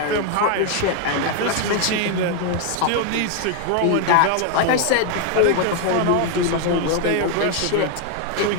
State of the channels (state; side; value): different; both; correlation 0.00